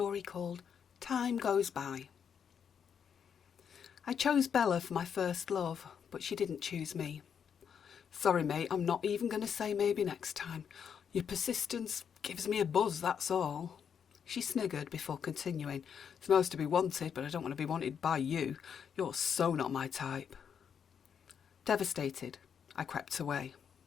called Time Goes By. I chose Bella for my first love, but she didn't choose me. Sorry mate, I'm not even going to say maybe next time. Your persistence gives me a buzz, that's all. She sniggered before continuing. It's most to be wanted, but I don't want to be wanted by you. You're so not my type. Devastated, I crept away.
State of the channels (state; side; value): quieter; right; 7.5 dB